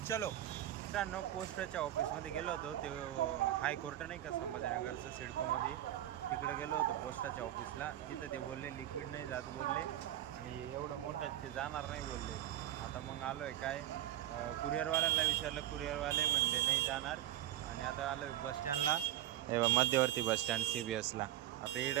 चलो मित्रांनो, पोस्टच्या ऑफिसमध्ये गेलो होतो. ते हायकोर्ट नाही का संभाजीनगरचं, सिडकोमध्ये, तिकडे गेलो होतो पोस्टाच्या ऑफिसला. तिथं ते बोलले लिक्विड नाही जात बोलले, आणि एवढं मोठं ते जाणार नाही बोलले. आता मग आलो आहे काय, कुरिअरवाल्याला विचारलं, कुरिअरवाले म्हणले नाही जाणार. आणि आता आलो आहे बसस्टँडला, मध्यवर्ती बसस्टँड CBSला. आता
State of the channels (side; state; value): left; quieter; 12.9 dB